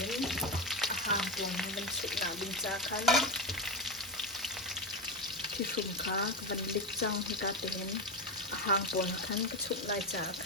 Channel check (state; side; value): normal; both; correlation 0.15